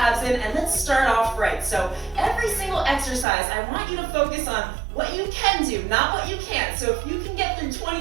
in, and let's start off right. So every single exercise, I want you to focus on what you can do, not what you can't. So if you can get through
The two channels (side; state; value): left; drops out; at 3.2 s